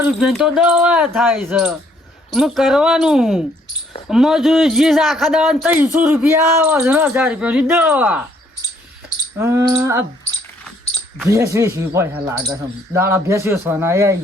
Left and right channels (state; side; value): normal; both; correlation 0.66